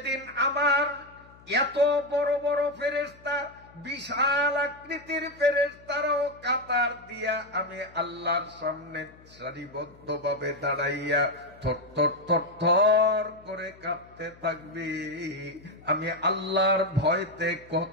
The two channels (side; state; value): left; noise; hum, 25 dB below the sound